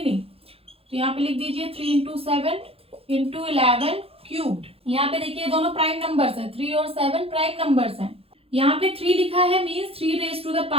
नहीं। तो यहाँ पे लिख दीजिए 3 इंटू 7 इंटू 11 क्यूब्ड। यहाँ पे देखिए दोनों प्राइम नंबर्स हैं, 3 और 7 प्राइम नंबर्स हैं। यहाँ पे 3 लिखा है मीन्स 3 रेज टू द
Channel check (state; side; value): late; left; 0.28 ms